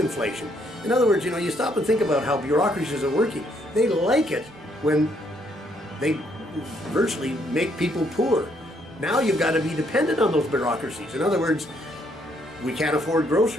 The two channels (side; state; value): both; normal; correlation 0.71